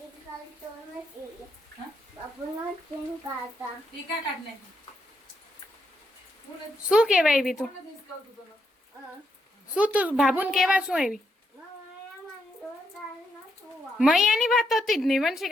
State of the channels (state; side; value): normal; both; correlation 0.79